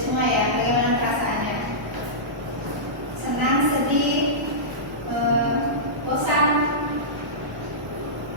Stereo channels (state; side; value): normal; both; correlation -0.16